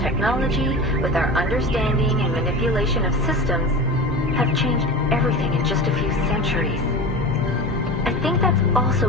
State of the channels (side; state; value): both; normal; correlation 0.30